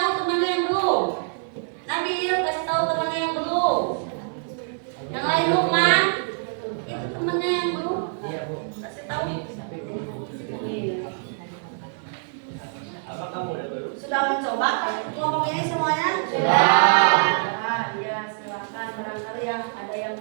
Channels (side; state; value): left; silent; 62 dB below the other